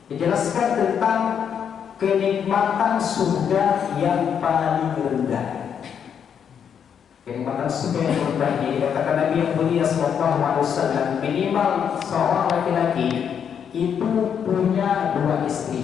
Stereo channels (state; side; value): quieter; right; 7.9 dB